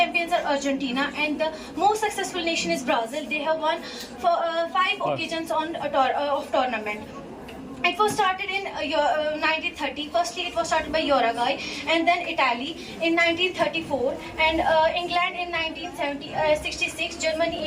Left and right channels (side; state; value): both; identical; correlation 1.00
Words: are Argentina, and the most successful nation is Brazil. They have won for 5 occasions of tournament. It was started in 1930. Firstly, it was started by Uruguay, and then Italy in 1934, and England in 1966,